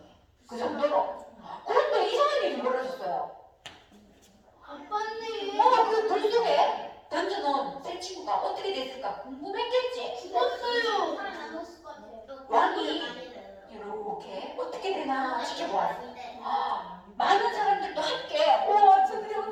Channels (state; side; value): identical; both; correlation 1.00